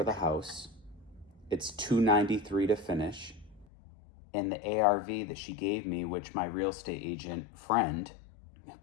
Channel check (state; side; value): drops out; right; at 3.7 s